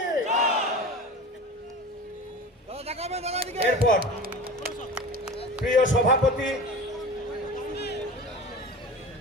এরপর প্রিয় সভাপতি,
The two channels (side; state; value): both; normal; correlation 0.34